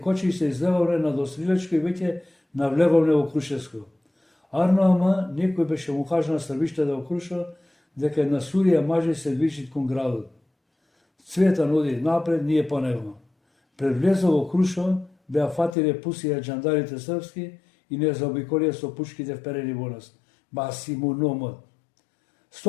кочи се излевавне на Дострилечко и веќе навлеговне во Крушевско. Арно ама некој беше му кажа на срвиште да окрушо, дека една сурија мажи се движит кон градот. Цветан оди напред, ние по него. Пред влезо во крушо, беа фатиле пусија джандарите српски и не заобиколија со пушките вперени во нас. Ба си му номот.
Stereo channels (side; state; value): right; drops out; at 15.8 s